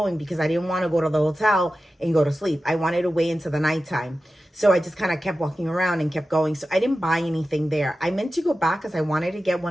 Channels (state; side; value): normal; both; correlation 0.94